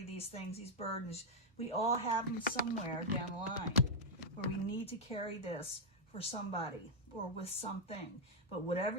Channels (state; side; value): normal; both; correlation -0.02